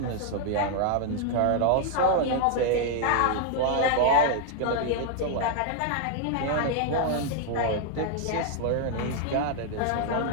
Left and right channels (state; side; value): different; both; correlation 0.00